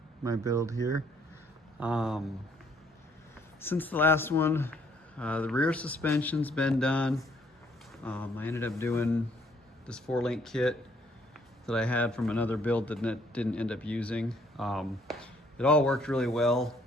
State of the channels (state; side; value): normal; both; correlation 0.65